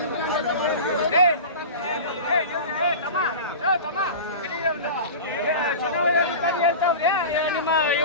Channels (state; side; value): inverted; both; correlation -0.31